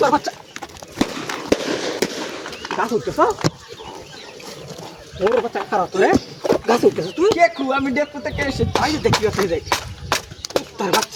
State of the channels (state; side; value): identical; both; correlation 1.00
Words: বাচ্চা গাছ উঠতেছ ওর বাচ্চা খারাপ তোরে গাছ উঠতেছ তুই দেখু আমি দেখতে থেকে এসে তাই দেখি আসলে যাই তোর